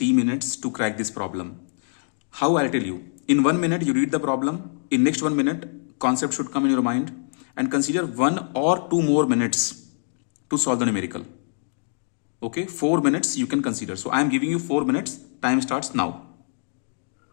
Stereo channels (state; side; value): silent; right; digital silence